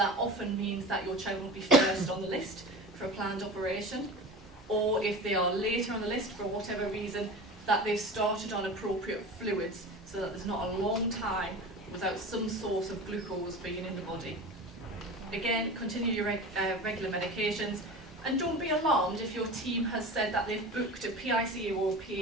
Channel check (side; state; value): both; normal; correlation 0.33